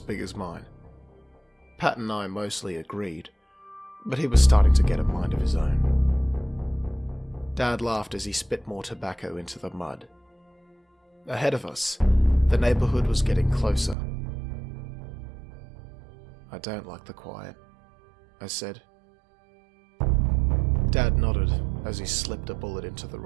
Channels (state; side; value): drops out; left; at 14.0 s